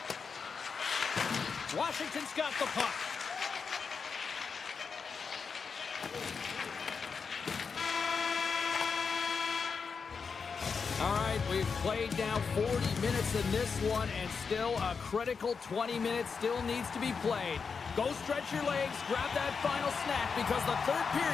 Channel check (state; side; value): quieter; right; 5.5 dB